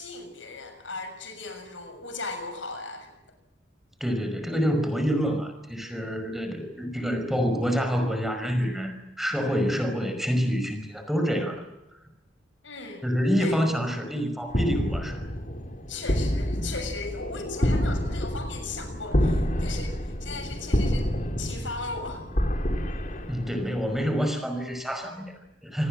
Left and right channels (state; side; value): normal; both; correlation 0.81